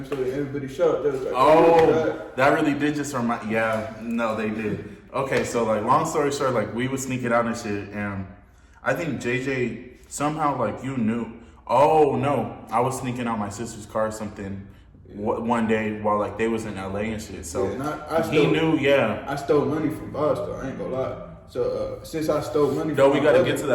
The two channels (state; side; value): identical; both; correlation 1.00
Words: story, everybody shot. They was like, oh, that really did just remind. Yeah, no, they did. Okay, so like, long story short, like we would sneak it out and shit, and I think JJ somehow like you knew. Oh no, I was sneaking out my sister's car or something one day while like they was in LA and shit. So he knew. Yeah, I stole money from Boston. I ain't gonna lie. So since I stole money, we gotta get to